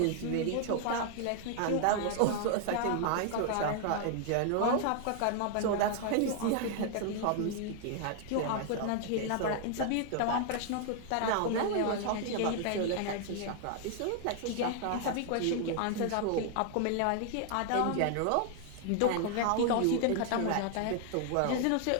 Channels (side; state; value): both; different; correlation 0.00